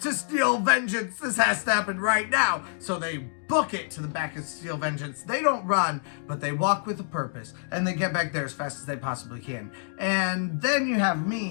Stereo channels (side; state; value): right; silent; digital silence